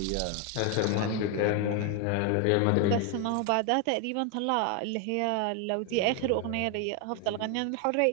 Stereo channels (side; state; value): both; different; correlation 0.01